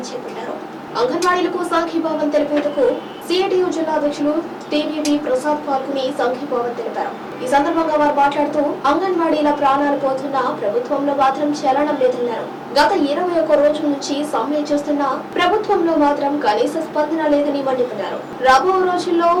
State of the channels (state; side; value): identical; both; correlation 1.00